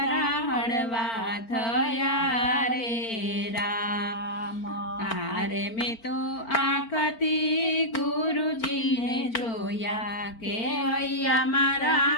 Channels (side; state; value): right; late; 4.4 ms